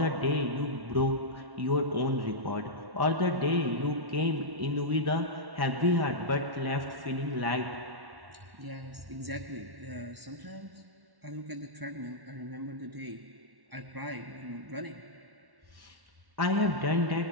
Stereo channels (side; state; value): left; late; 1.1 ms